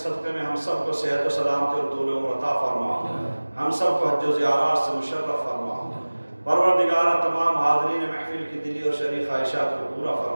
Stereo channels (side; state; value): both; inverted; correlation -1.00